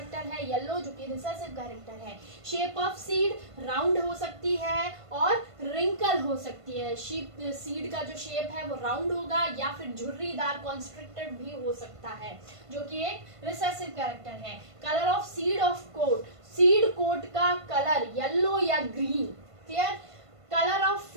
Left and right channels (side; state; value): left; late; 1.5 ms